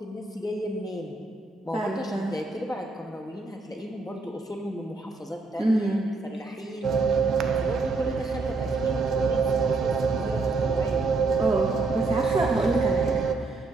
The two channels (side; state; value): left; quieter; 3.6 dB